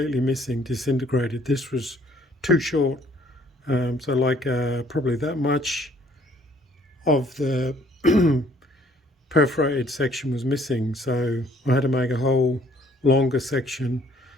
missing, disintegrated. This was too short, so like probably that much of the perforated section was missing, so I had to make a whole longer section,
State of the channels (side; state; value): both; normal; correlation 0.61